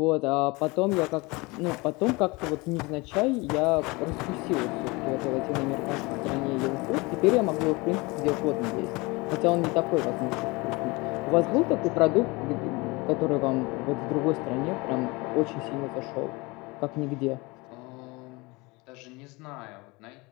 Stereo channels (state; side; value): quieter; right; 25.0 dB